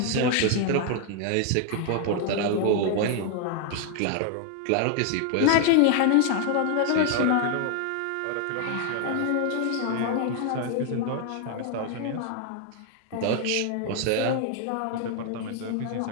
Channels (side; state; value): both; different; correlation 0.00